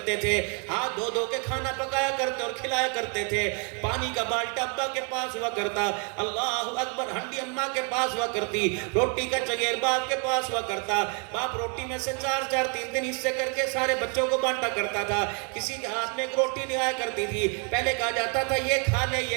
تھے، ہاتھ دھو دھو کے کھانا پکایا کرتے اور کھلایا کرتے تھے. پانی کا بالٹا ابا کے پاس ہوا کرتا، اللہ اکبر، ہنڈی اماں کے پاس ہوا کرتی، روٹی کا چگیر باپ کے پاس ہوا کرتا. باپ روٹی میں سے 4 3 حصے کر کے سارے بچوں کو بانٹا کرتا تھا. کسی کے ہاتھ میں ایک روٹی نہیں آیا کرتی تھی، پہلے کہا جاتا تھا یہ کھا لے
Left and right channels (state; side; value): quieter; left; 38.1 dB